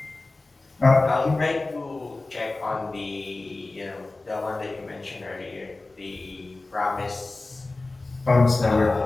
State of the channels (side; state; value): right; quieter; 3.2 dB